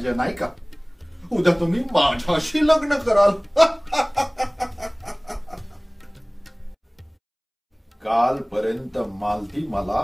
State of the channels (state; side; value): identical; both; correlation 1.00